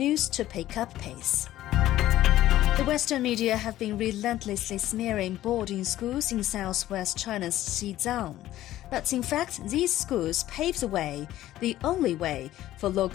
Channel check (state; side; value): quieter; right; 14.1 dB